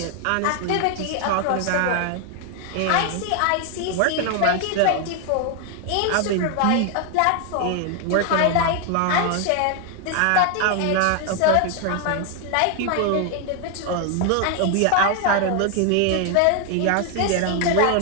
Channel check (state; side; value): different; both; correlation 0.00